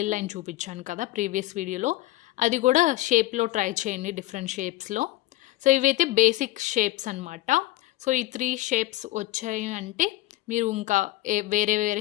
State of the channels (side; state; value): right; quieter; 17.4 dB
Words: లైన్ చూపించాను కదా ప్రీవియస్ వీడియోలో. అది కూడా షేప్‌లో ట్రై చేయండి డిఫరెంట్ షేప్స్‌లో. సో, ఇవైతే బేసిక్ షేప్స్ అనమాట. సో, ఈ 3 షేప్స్ వచ్చాయి అంటే మీరు ఇంకా వేరే